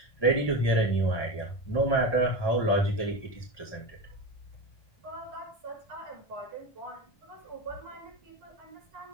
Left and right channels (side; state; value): right; late; 1.2 ms